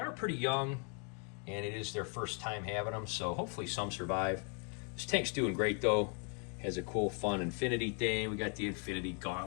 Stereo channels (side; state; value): right; quieter; 38.9 dB